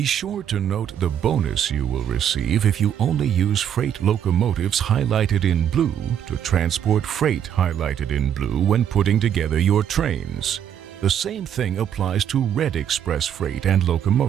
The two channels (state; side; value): quieter; left; 9.3 dB